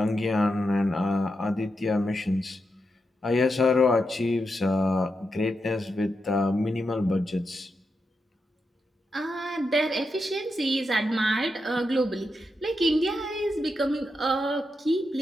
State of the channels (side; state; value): both; normal; correlation 0.85